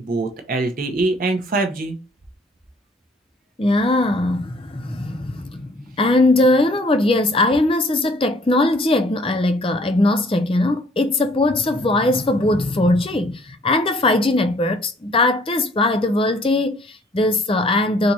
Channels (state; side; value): normal; both; correlation 0.59